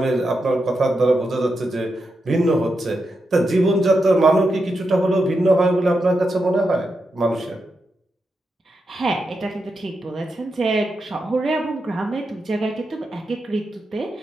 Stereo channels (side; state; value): both; normal; correlation 0.86